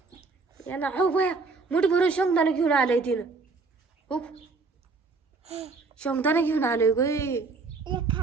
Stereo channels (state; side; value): quieter; left; 4.2 dB